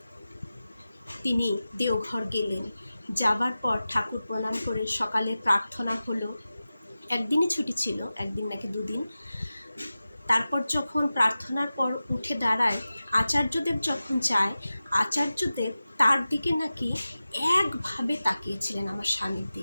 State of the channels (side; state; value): both; inverted; correlation -0.95